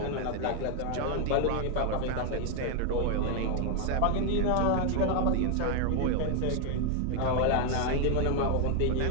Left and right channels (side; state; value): both; different; correlation 0.00